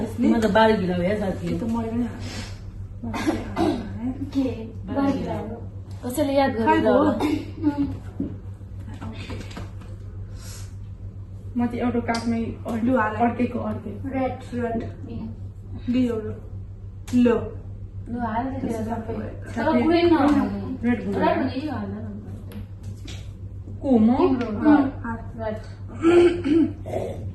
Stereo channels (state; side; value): identical; both; correlation 1.00